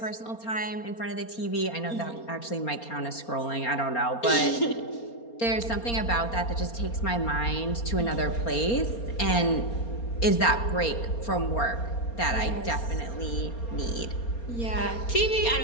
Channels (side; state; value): right; late; 4.3 ms